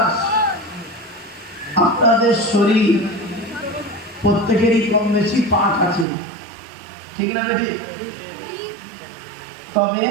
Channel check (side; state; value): left; drops out; at 6.1 s